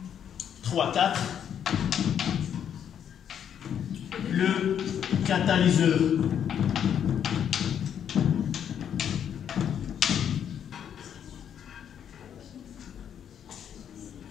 3-4. Le catalyseur.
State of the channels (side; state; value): right; quieter; 8.9 dB